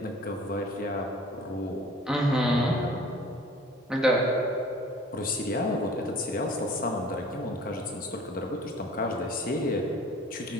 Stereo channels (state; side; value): normal; both; correlation 0.47